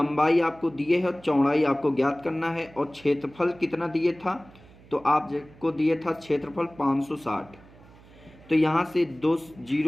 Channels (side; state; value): right; noise; hum, 24 dB below the sound